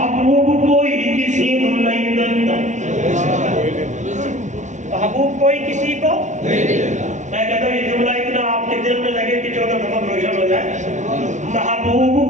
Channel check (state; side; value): late; left; 0.35 ms